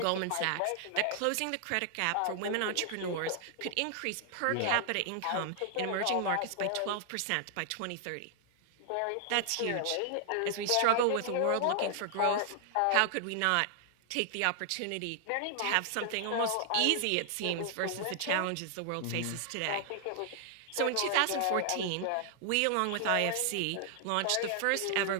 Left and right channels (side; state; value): both; different; correlation 0.00